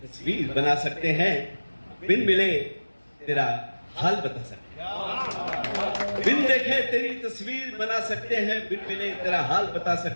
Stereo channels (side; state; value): both; inverted; correlation -1.00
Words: तस्वीर बना सकते हैं, बिन मिले तेरा हाल बता सकते हैं. बिन देखे तेरी तस्वीर बना सकते हैं, बिन मिले तेरा हाल बता